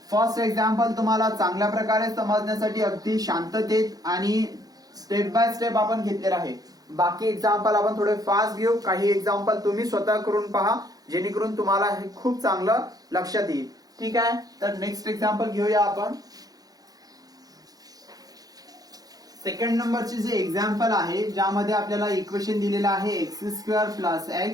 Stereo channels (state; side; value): late; left; 0.18 ms